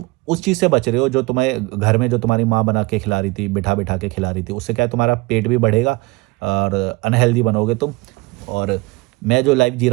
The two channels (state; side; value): quieter; left; 23.6 dB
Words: उस चीज़ से बच रहे हो जो तुम्हें घर में जो तुम्हारी माँ बना के खिला रही थी, बिठा-बिठा के खिला रही थी। उससे क्या है, तुम्हारा पेट भी बढ़ेगा और अनहेल्दी बनोगे तुम। और मैं जो लाइफ़ जी